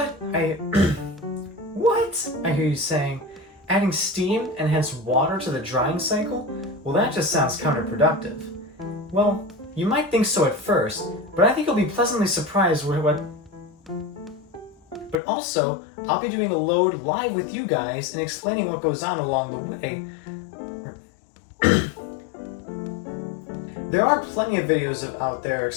What? I hear you saying. Adding steam and hence water to the drying cycle? Well, that just sounds counterproductive. Well, you might think so at first, but I think you'll be pleasantly surprised with what... But also, I'll be doing a load live with you guys and explaining what goes on along the way. There are plenty of videos out there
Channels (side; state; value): right; drops out; at 15.2 s